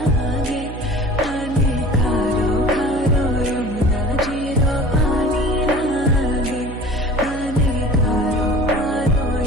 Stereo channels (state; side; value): noise; right; hum, 10 dB below the sound